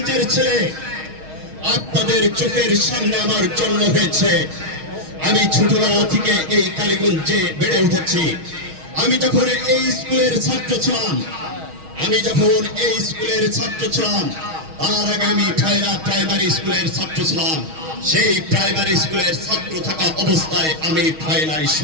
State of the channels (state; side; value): late; left; 6.3 ms